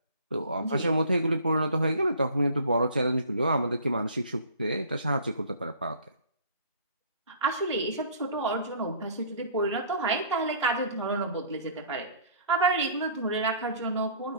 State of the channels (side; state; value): both; inverted; correlation -0.50